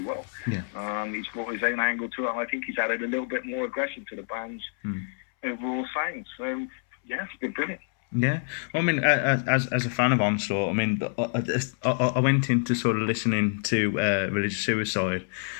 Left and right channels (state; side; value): silent; right; 60 dB below the other